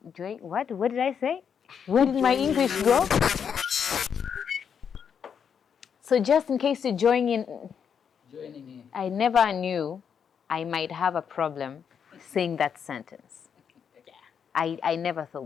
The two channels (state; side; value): quieter; right; 7.3 dB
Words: What did I say? Where did my English go? So just in case you're joining in, I never knew I might have a problem saying that sentence. I never